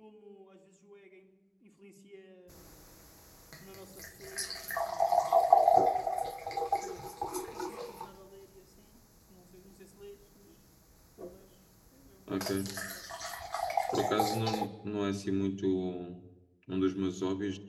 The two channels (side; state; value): both; identical; correlation 1.00